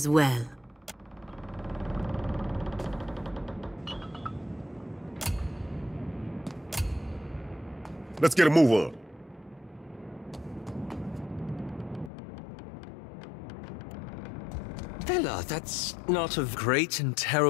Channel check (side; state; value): right; drops out; at 12.1 s